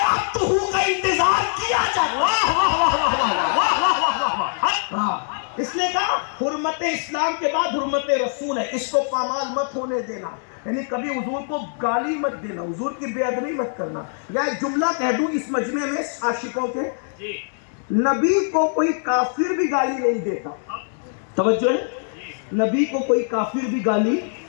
اب تو ہو کا انتظار کیا جائے. واہ واہ واہ واہ واہ واہ واہ واہ واہ. اسلام کے بعد حرمت رسول ہے، اس کو پامال مت ہونے دینا، یعنی کبھی حضور کو گالی مت دینا، حضور کی بے ادبی مت کرنا۔ یا ایک جملہ کہہ دوں اس مجمع میں عاشقوں کے، نبی کو کوئی کافر بھی گالی نہیں دیتا، توجہ ہے، نبی کو کوئی کافر بھی گالی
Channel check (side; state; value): right; silent; 64 dB below the other